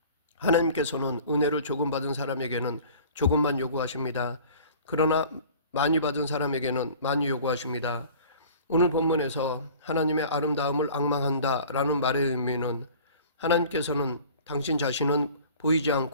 하나님께서는 은혜를 조금 받은 사람에게는 조금만 요구하십니다. 그러나 많이 받은 사람에게는 많이 요구하십니다. 오늘 본문에서 하나님의 아름다움을 앙망한다 라는 말의 의미는 하나님께서는 당신 자신은 보이지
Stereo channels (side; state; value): both; inverted; correlation -0.46